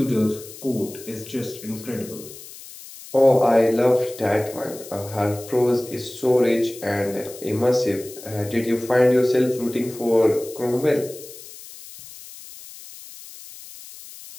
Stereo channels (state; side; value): noise; left; hiss, 16 dB below the sound